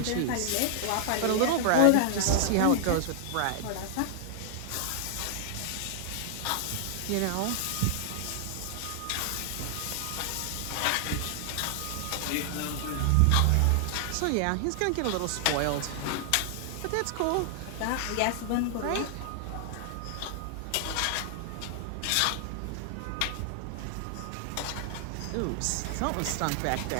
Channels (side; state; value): both; different; correlation 0.00